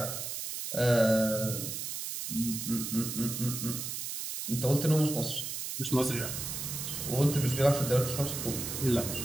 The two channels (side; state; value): right; noise; hiss, 5 dB below the sound